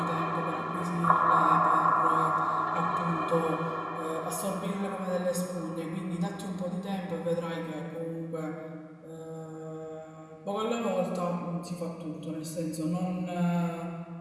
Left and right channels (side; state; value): both; identical; correlation 1.00